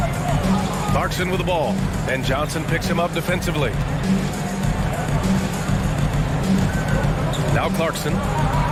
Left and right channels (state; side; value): identical; both; correlation 1.00